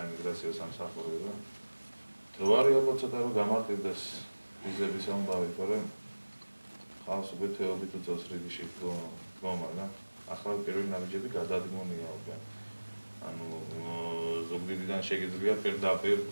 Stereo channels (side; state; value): both; inverted; correlation -1.00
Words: სამსახურებო. დრო არის ალბათ ცოტა რომ გამარტივდეს ვიზების ამბავი, თორემ ხალხს უკვე თეობით უწევს რიგში დგომა და ახლა პირველი ნაბიჯები გადადგმულია უკვე. ანუ ზუგდიდიდან შეგიძლია პირდაპირ